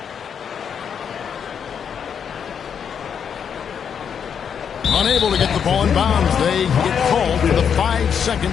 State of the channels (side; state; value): right; quieter; 7.5 dB